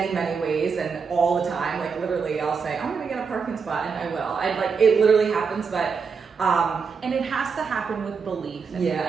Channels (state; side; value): quieter; left; 5.6 dB